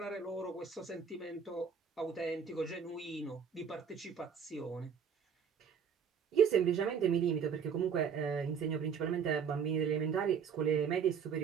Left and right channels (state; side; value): quieter; left; 6.9 dB